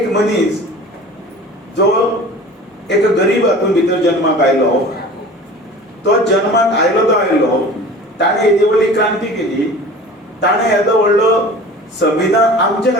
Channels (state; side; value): normal; both; correlation 0.41